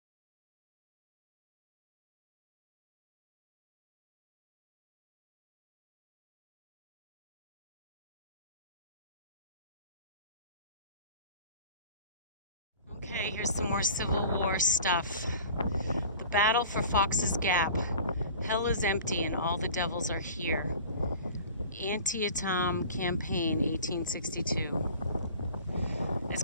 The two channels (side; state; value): both; inverted; correlation -0.43